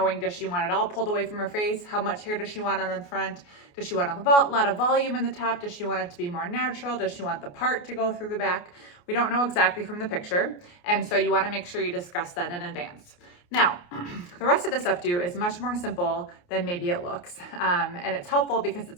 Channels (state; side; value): late; right; 28 ms